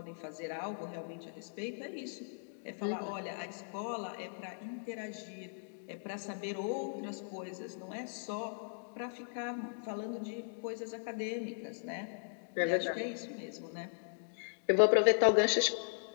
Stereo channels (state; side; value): silent; right; digital silence